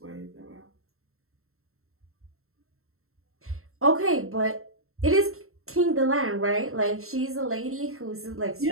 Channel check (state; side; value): late; left; 0.62 ms